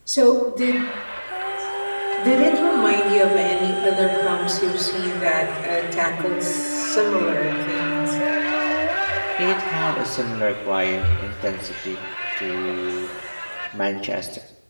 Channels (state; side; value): inverted; both; correlation -1.00